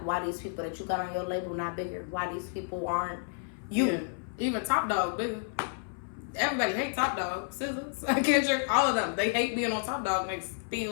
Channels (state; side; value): silent; right; 57 dB below the other